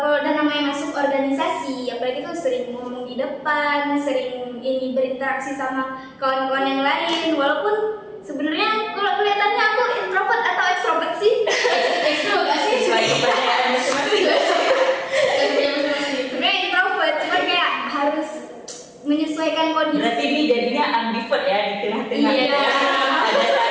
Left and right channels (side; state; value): both; identical; correlation 1.00